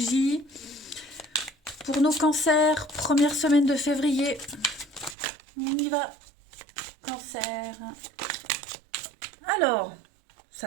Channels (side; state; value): left; drops out; at 5.2 s